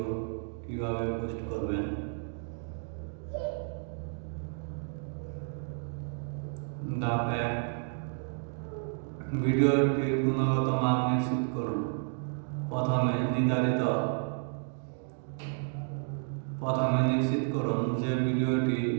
কিভাবে পোস্ট করবেন। ধাপ 1, ভিডিওটির গুণগত মান নিশ্চিত করুন। প্রথমে নিশ্চিত করুন যে ভিডিওটি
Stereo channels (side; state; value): left; silent; 57 dB below the other